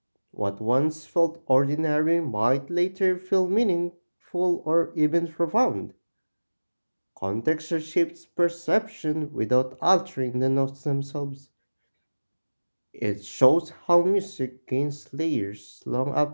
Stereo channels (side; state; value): both; inverted; correlation -1.00